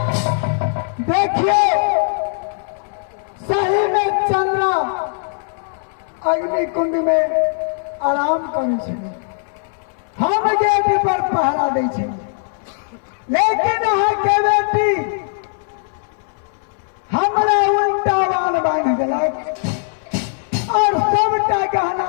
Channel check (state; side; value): silent; right; digital silence